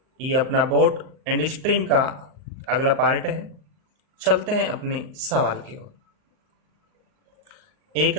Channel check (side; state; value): left; late; 38 ms